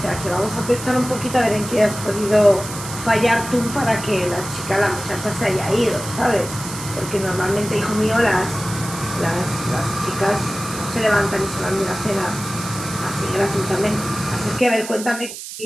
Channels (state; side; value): noise; right; hiss, 10 dB below the sound